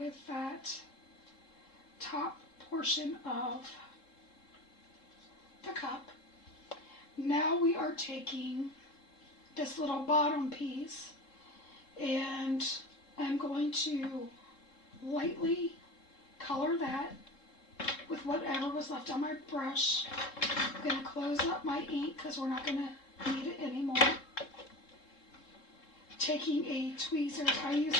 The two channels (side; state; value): right; late; 3.7 ms